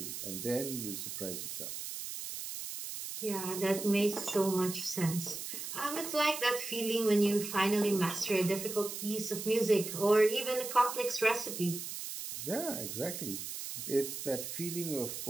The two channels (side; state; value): right; noise; hiss, 7 dB below the sound